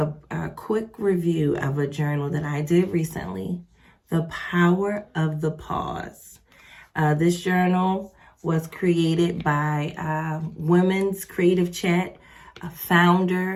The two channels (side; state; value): both; identical; correlation 1.00